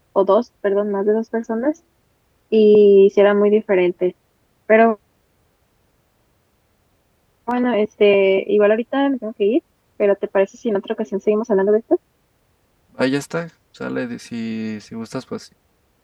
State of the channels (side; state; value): both; identical; correlation 1.00